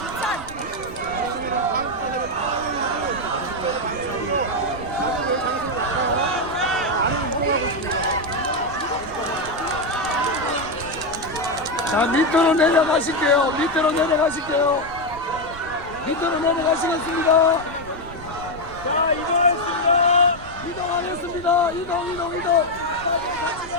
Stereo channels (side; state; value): right; noise; rumble, 16 dB below the sound